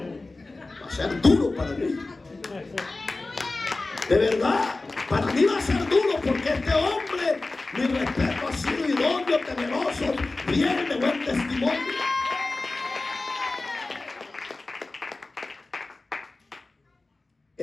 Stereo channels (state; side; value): quieter; right; 3.3 dB